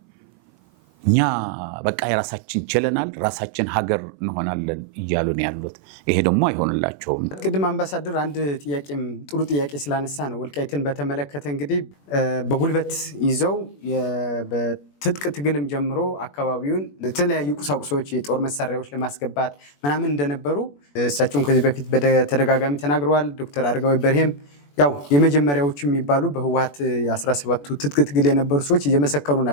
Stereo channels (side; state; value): right; late; 21 ms